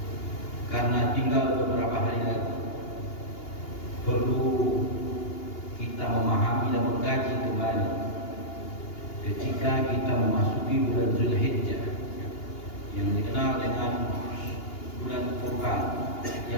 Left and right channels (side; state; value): right; late; 2.8 ms